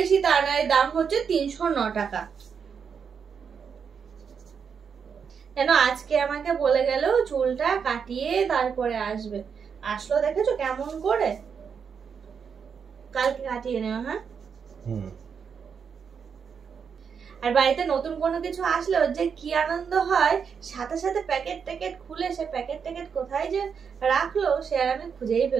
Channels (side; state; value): left; quieter; 6.6 dB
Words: তা না, এর দাম হচ্ছে 309 টাকা। কেন আজকে আমাকে বলে গেল চুলটা কাটিয়ে তারপরে আসবে, আসলো দেখেছো কেমন করে, কালকে কাটিয়ে নেওয়া। হ্যাঁ, আর বাড়িতে নতুন কোনো কিছু আসলে ওর যে কি আনন্দ হয়, সাথে সাথে প্যাকেট ট্যাকেট খুলে সে প্যাকেট ট্যাকেট কোথায় যে রাখলো সে আর আমি খুঁজেই